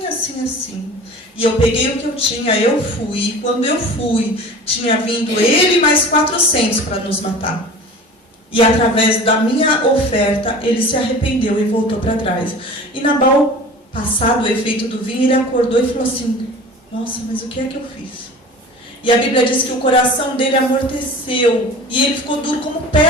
assim, assim. E eu peguei o que eu tinha, eu fui. E quando eu fui, tinha vindo ele mais 400 para nos matar. E através da minha oferta, ele se arrependeu e voltou para trás. E Nabal, passado o efeito do vinho, ele acordou e falou assim: nossa, mas o que é que eu fiz? E a Bíblia diz que o coração dele amorteceu. E ele ficou duro como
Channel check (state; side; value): normal; both; correlation 0.39